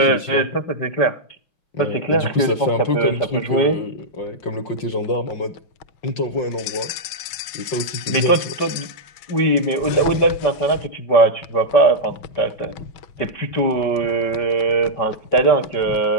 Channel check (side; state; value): right; late; 5.1 ms